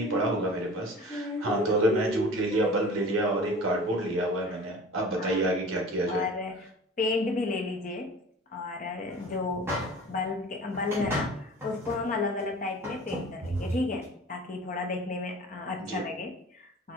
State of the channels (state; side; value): normal; both; correlation 0.42